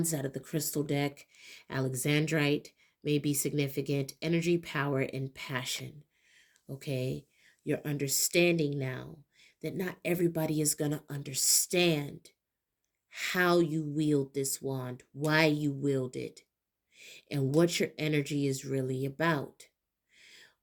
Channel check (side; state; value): both; identical; correlation 1.00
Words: out of the crystal deck. Alexandrite may be significant. Energy, power, and passion. Okay. You're understanding now that not everybody is going to understand how you wield this wand, why you wield it, and what your energy is really about.